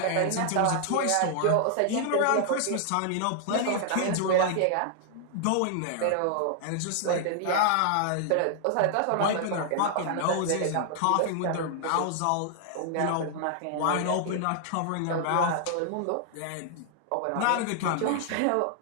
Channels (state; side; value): different; both; correlation 0.00